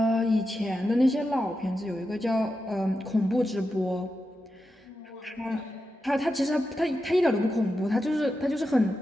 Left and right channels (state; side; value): normal; both; correlation 0.89